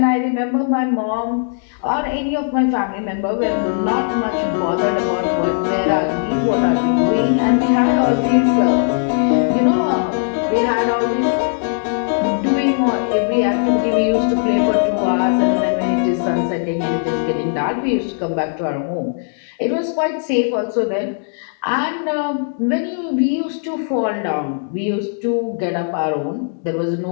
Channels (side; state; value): right; silent; digital silence